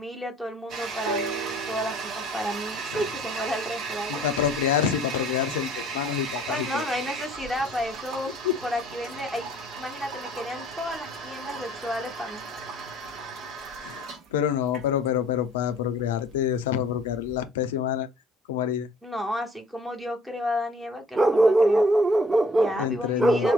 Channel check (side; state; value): both; normal; correlation 0.55